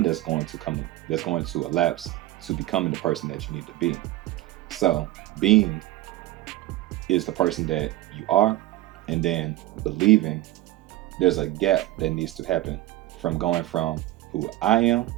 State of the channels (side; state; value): left; quieter; 16.3 dB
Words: that's going to elapse to becoming the person that you need to be. So being is the person that you are, and then believing, there's a gap that needs to happen from going from who I am